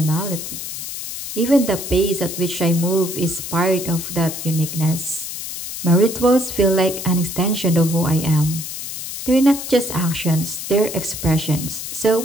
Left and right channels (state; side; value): noise; left; hiss, 7 dB below the sound